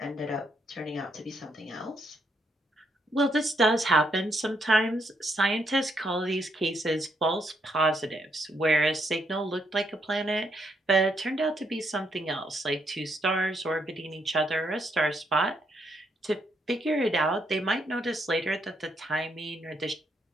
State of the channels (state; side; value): normal; both; correlation 0.75